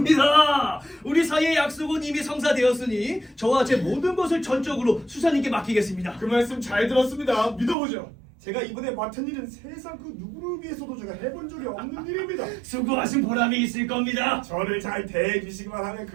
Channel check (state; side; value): drops out; left; at 7.8 s